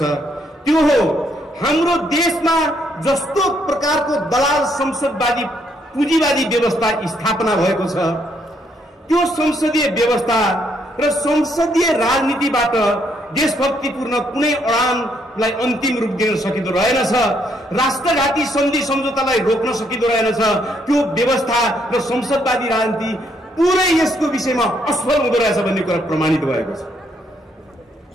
त्यो हो हाम्रो देशमा जस्तो प्रकारको दलाल संसदवादी पुँजीवादी व्यवस्था स्थापना भएको छ त्यो संसदीय व्यवस्था र संसदीय राजनीतिबाट देशभक्तिपूर्ण कुनै अडानलाई अन्तिम रूप दिन सकिँदो रहेनछ, राष्ट्रघाती सन्धि सम्झौतालाई रोक्न सकिँदो रहेनछ। त्यो व्यवस्था र संसदवादी राजनीति पुरै यसको विषयमा असफल हुँदो रहेछ भन्ने कुरा प्रमाणित भएको छ।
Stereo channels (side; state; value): both; normal; correlation 0.72